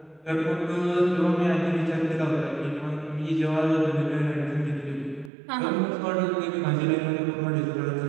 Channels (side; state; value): left; drops out; at 5.3 s